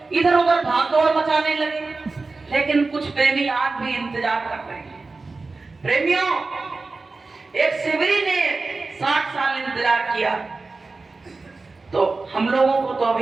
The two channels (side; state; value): left; quieter; 3.8 dB